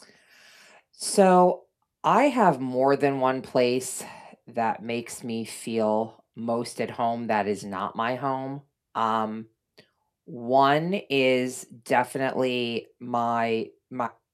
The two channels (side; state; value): both; identical; correlation 1.00